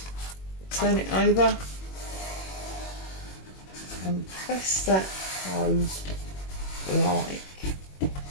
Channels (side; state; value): right; late; 21 ms